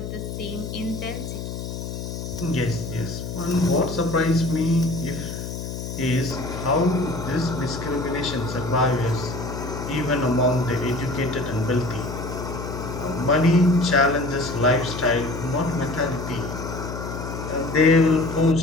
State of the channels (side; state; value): left; noise; hum, 7 dB below the sound